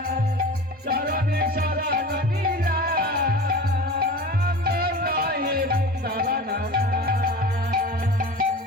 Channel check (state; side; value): normal; both; correlation 0.35